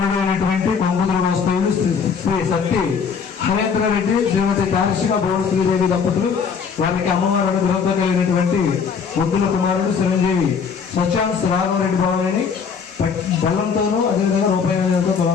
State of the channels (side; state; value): right; quieter; 6.2 dB